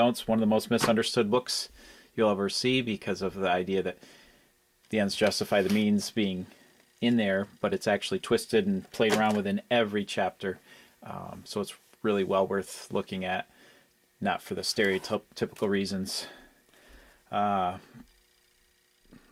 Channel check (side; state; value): both; identical; correlation 1.00